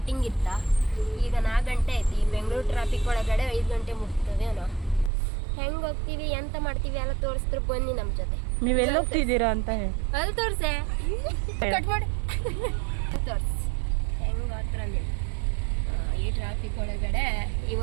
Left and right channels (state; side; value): drops out; left; at 5.1 s